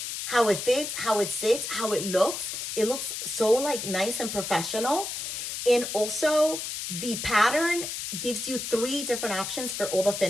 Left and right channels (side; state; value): left; noise; hiss, 5 dB below the sound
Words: how it fits, how it sits, how it looks. It looks so like nice and professional. And also the pattern gives you 3 different options for all the